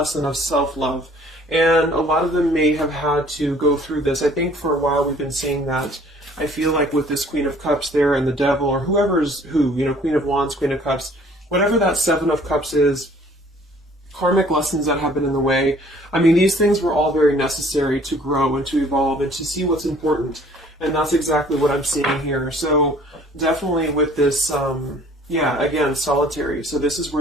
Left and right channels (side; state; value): both; normal; correlation 0.55